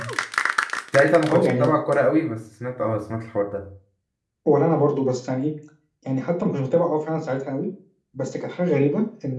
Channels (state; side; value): identical; both; correlation 1.00